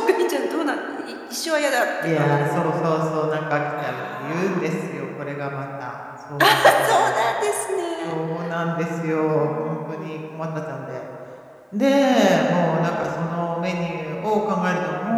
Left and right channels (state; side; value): identical; both; correlation 1.00